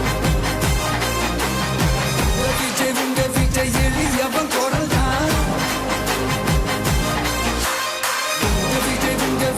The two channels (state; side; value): identical; both; correlation 1.00